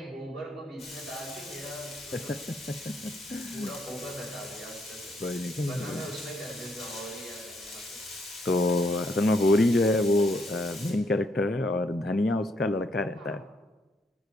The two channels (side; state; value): both; normal; correlation 0.73